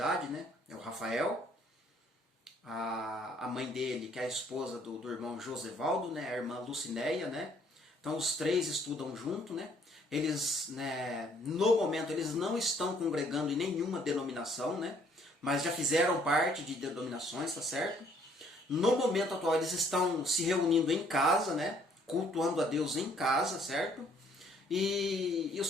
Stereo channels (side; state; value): both; normal; correlation 0.63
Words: né? É o Rafael. A mãe dele, que é a esposa do irmão Josevaldo, né? A irmã Lucinéia, né? Então os três estudam junto, né? Eles, né, no momento, eles não estão congregando em nenhuma denominação, né? Mas já fizeram parte de denominações, tá certo? No momento atual eles estão se reunindo em casa, né? Cultuando a Deus em casa, certo? E o